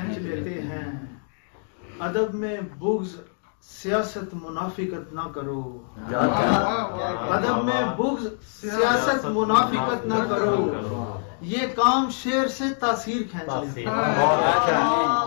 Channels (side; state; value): right; silent; 62 dB below the other